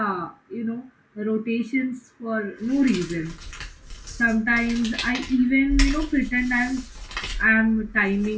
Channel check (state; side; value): identical; both; correlation 1.00